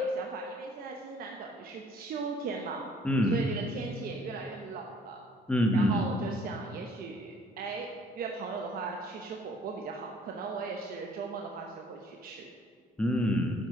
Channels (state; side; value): normal; both; correlation 0.57